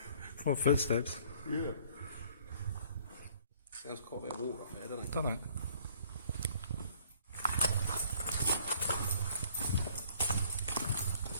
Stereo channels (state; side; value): inverted; both; correlation -0.58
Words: What footsteps? Yeah. Sounds quite a bit of water up there, doesn't it? Doesn't it?